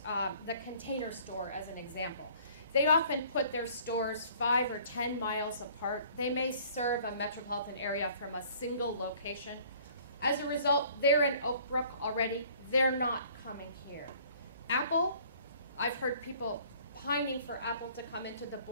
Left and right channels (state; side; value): inverted; both; correlation -0.54